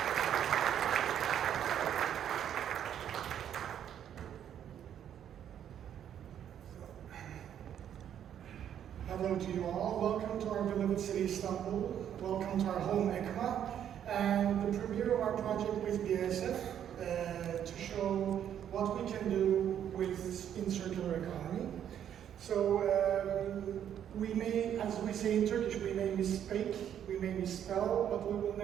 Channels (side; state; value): left; quieter; 9.7 dB